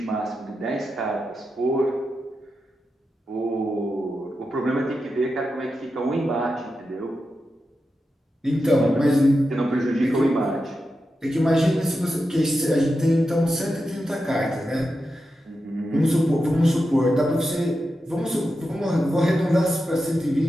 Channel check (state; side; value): normal; both; correlation 0.89